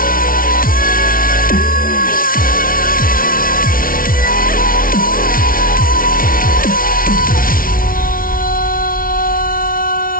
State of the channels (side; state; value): right; late; 0.42 ms